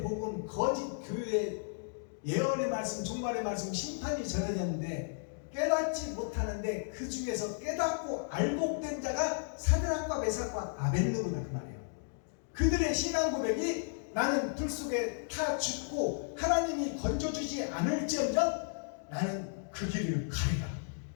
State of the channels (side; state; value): right; silent; digital silence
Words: 복음 거짓 교회의 예언의 말씀, 종말의 말씀, 심판이 전해졌는데 깨닫지 못하는데 그 중에서 깨닫고 알복된 자가 사드락과 메삭과 아벳느고다 그 말이에요. 그들의 신앙 고백이 나는 불 속에 타 죽고 하나님이 건져주지 않을지언정 나는 그 길을 가리라.